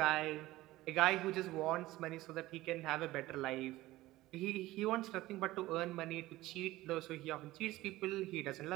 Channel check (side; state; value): left; quieter; 17.4 dB